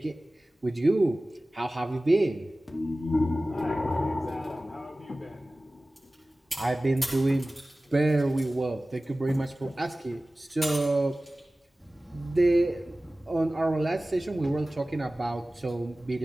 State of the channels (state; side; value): normal; both; correlation 0.97